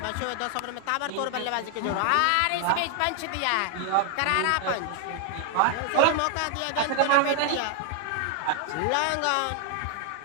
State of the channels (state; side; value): different; both; correlation 0.00